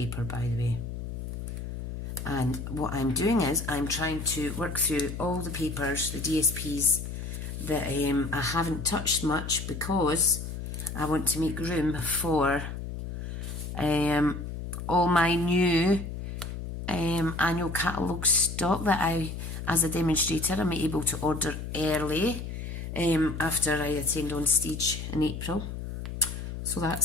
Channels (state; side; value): noise; left; hum, 7 dB below the sound